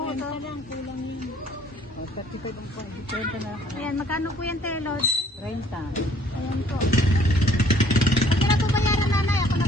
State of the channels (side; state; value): both; normal; correlation 0.59